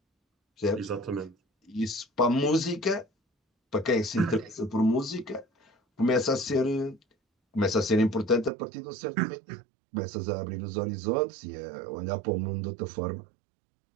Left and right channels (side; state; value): left; drops out; at 8.5 s